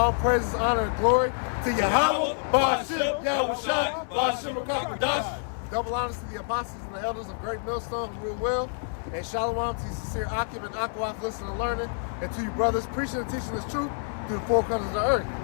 praises, honor, and glory to Yahweh, Ba'ashem, Yahushua, Ba'ashem, Kakadash. Double honors to the apostles and the elders of Great Millstone who rule well. And shalom to you sincere Akim and Akwaf listening and learning. And to you brothers preaching and teaching this truth through the four corners of the earth.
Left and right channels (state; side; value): silent; right; 57 dB below the other